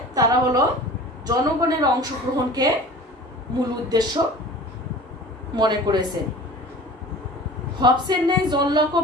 তারা হলো জনগণের অংশগ্রহণকে মূল উদ্দেশ্য মনে করেছেন। হবসের ন্যায় জন লকও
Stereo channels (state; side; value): normal; both; correlation 0.41